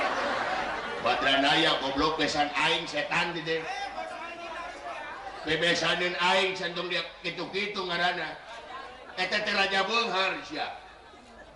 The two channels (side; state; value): both; identical; correlation 1.00